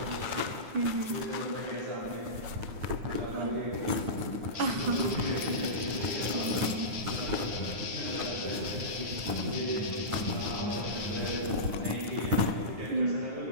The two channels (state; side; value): late; left; 9.5 ms